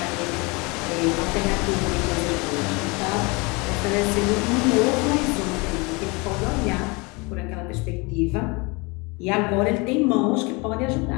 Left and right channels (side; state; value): right; quieter; 27.7 dB